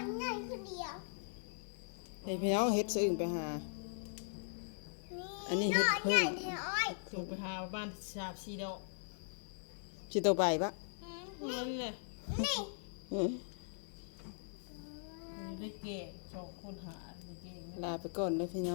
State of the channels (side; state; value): right; silent; 51 dB below the other